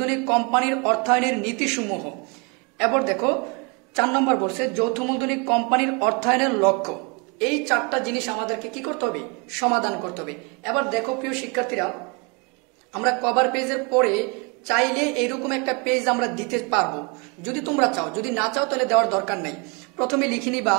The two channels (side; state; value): left; quieter; 31.8 dB